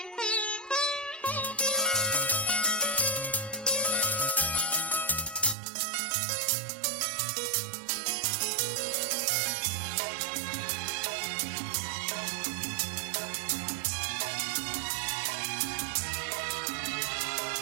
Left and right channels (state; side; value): drops out; left; at 5.6 s